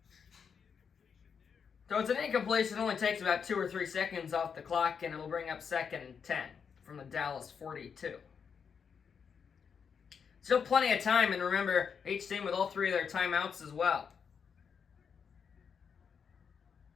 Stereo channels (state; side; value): quieter; right; 6.6 dB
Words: So it's an incompletion. It only takes about 2 or 3 seconds off the clock, and it'll bring up 2nd and 10 from the Dallas 42. Still plenty of time, and remember, each team with all 3 of their timeouts as well.